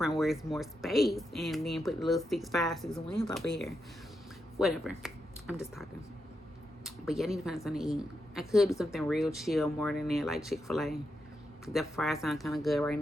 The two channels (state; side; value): normal; both; correlation 0.85